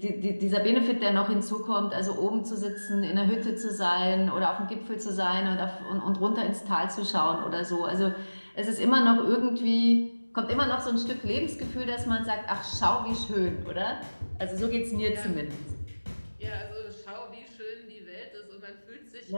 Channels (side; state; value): both; inverted; correlation -1.00